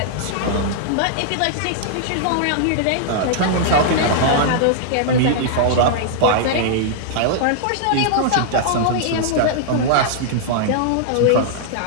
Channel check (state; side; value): different; both; correlation -0.01